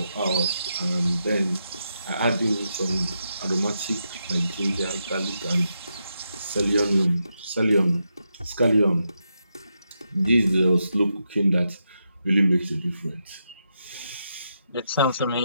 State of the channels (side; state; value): both; inverted; correlation -0.84